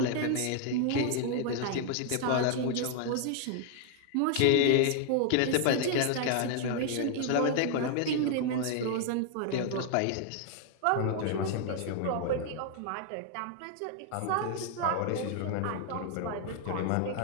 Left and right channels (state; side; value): different; both; correlation 0.00